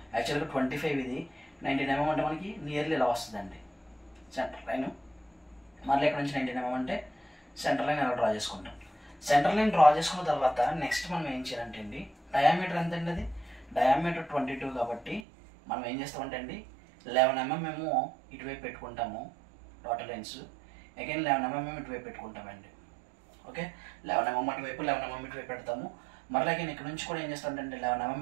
యాక్చువల్గా 25 ఇది, 19 mm అంటే మనకి నియర్లీ ఇలా వస్తుందండి సెంటర్ లైన్. మళ్ళీ ఇక్కడ నుంచి 19 mm అంటే సెంటర్ లైన్ ఎలా డ్రా చేసుకుంటాం. సెంటర్ లైన్ డ్రా చేసుకున్న తర్వాత నెక్స్ట్ మనం ఏం చేయాలంటే అండి, డయామీటర్ ఎంత అండి, అది డయామీటర్ 22 కాబట్టి మనం ఏం చేస్తామంటే అండి 11 mm మేము ఇటువైపు పెట్టుకుంటాము డాటర్ లైన్స్. అగైన్ 11 mm ఇటువైపు పెట్టుకుంటామండి. ఓకే, 11 mm అటువైపు 11 mm ఇటువైపు పెడతాము. మరలా అగైన్ ఇక్కడ నుంచి కూడా ఏం చేస్తామంటే 11 mm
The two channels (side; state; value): left; drops out; at 15.2 s